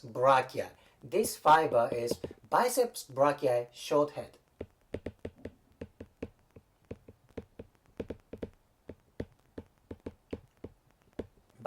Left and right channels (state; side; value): identical; both; correlation 1.00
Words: brachii. This fiber is biceps brachii short head.